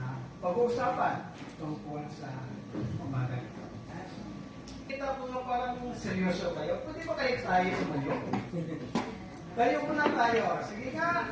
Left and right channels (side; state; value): both; identical; correlation 1.00